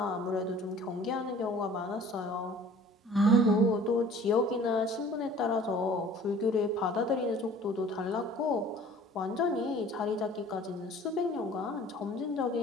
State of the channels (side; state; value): both; normal; correlation 0.49